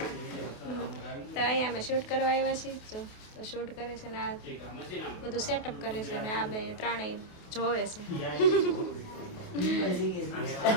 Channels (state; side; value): late; right; 28 ms